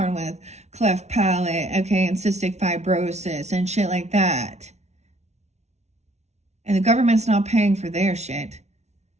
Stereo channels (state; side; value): late; left; 0.32 ms